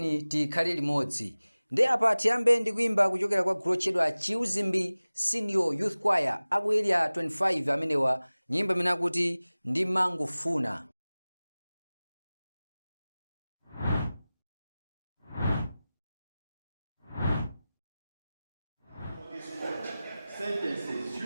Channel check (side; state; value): both; inverted; correlation -0.98